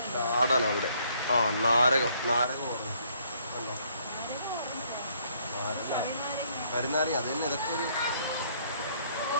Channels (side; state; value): both; inverted; correlation -0.66